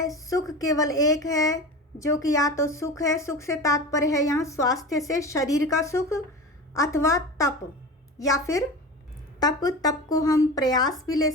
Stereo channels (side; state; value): both; normal; correlation 0.30